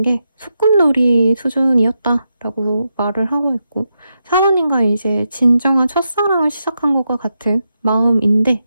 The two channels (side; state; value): both; inverted; correlation -0.86